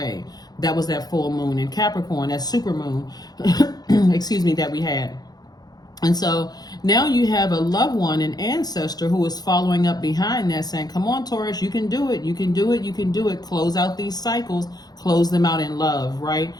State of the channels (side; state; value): right; late; 0.19 ms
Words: That was that full moon in Capricorn, that super moon, excuse me, that we had. And so now you have a loved one, an ancestor who is following up behind that saying, come on, Taurus, you can do it. You can do it. You can do it. Close out these cycles, close them out in love, right?